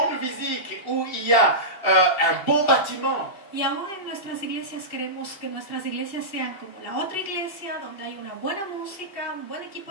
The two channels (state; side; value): late; right; 2.7 ms